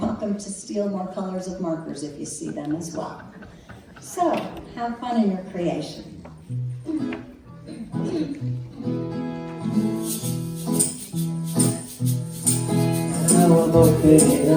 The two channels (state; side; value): identical; both; correlation 1.00